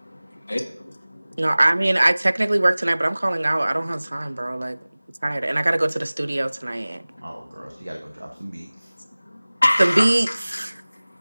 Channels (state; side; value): inverted; both; correlation -0.99